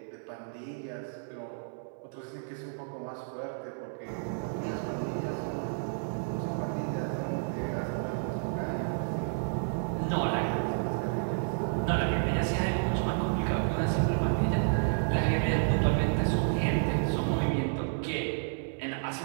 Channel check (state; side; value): silent; left; 57 dB below the other